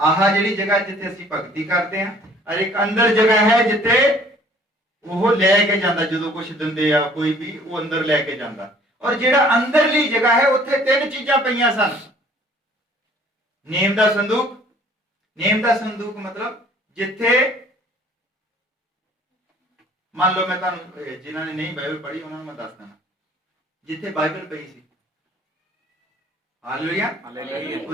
ਜਿਹੜੀ ਜਗ੍ਹਾ ਜਿੱਥੇ ਅਸੀਂ ਭਗਤੀ ਕਰਦੇ ਹਾਂ, ਔਰ ਇੱਕ ਅੰਦਰ ਜਗ੍ਹਾ ਹੈ ਜਿੱਥੇ ਉਹ ਲੈ ਕੇ ਜਾਂਦਾ, ਜਦੋਂ ਕੁਝ ਦਿੰਦੇ ਆ ਕੋਈ ਵੀ, ਉਹ ਅੰਦਰ ਲੈ ਕੇ ਜਾਂਦਾ। ਔਰ ਜਿਹੜਾ ਅੰਦਰਲੀ ਜਗ੍ਹਾ ਹੈ ਉੱਥੇ 3 ਚੀਜ਼ਾਂ ਪਈਆਂ ਸਨ। ਨੇਮ ਦਾ ਸੰਦੂਕ, ਨੇਮ ਦਾ ਸੰਦੂਕ ਮਤਲਬ ਜਿੱਥੇ ਮੰਨ ਲਓ, ਮੈਂ ਤੁਹਾਨੂੰ ਜਿਨ੍ਹਾਂ ਨੇ ਨਹੀਂ ਬਾਈਬਲ ਪੜ੍ਹੀ ਉਹਨਾਂ ਨੂੰ ਮੈਂ ਦੱਸ ਦਿੰਦਾ, ਜਿੱਥੇ ਬਾਈਬਲ ਪਈ ਸੀ। ਹਾਲੇਲੂਇਆ।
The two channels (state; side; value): normal; both; correlation 0.55